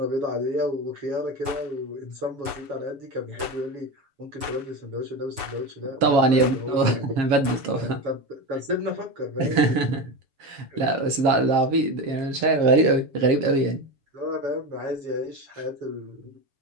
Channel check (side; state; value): left; late; 7.0 ms